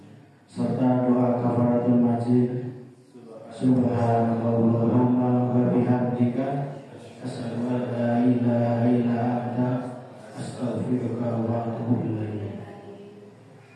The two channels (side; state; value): both; identical; correlation 1.00